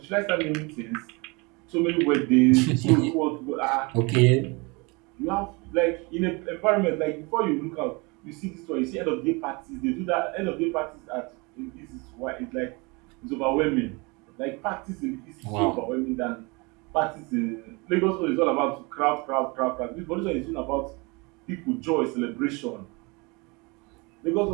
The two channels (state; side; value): quieter; left; 27.6 dB